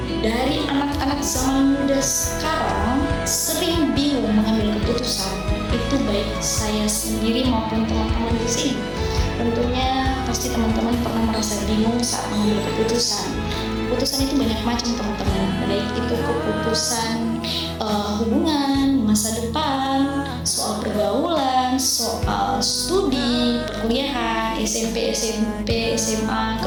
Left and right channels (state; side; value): identical; both; correlation 1.00